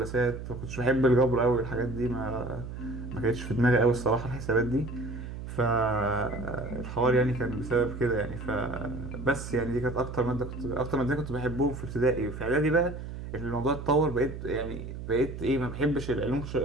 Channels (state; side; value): noise; right; hum, 9 dB below the sound